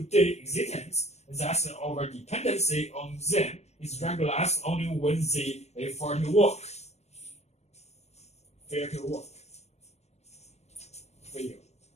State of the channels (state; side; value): late; right; 0.32 ms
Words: existence. Thus, our dependency on them is regularized only when they fail to work.